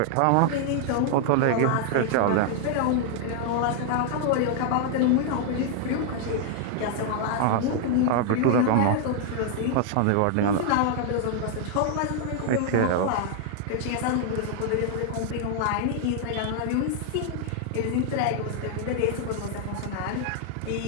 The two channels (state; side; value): different; both; correlation 0.00